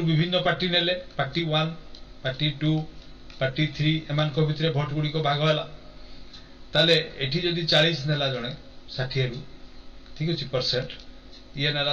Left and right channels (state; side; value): identical; both; correlation 1.00